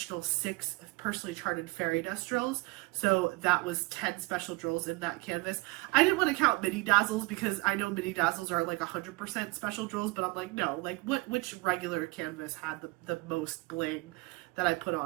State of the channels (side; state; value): left; quieter; 24.2 dB